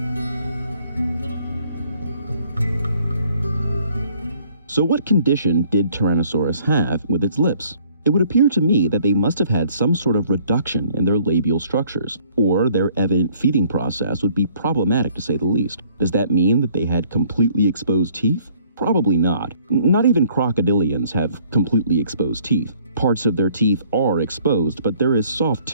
So what condition did Tyrannosaurus have with its lips? It would appear to me that they must have had some sort of reduction in their labial structures, or their evident feeding process would be problematic to say the least. Does that mean that they had completely exposed teeth? Probably not. Not even crocodilians have completely exposed teeth. Parts of their teeth are exposed, but there is soft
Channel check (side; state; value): both; inverted; correlation -0.61